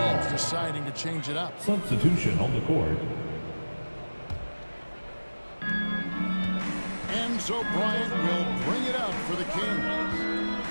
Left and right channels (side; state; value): both; inverted; correlation -1.00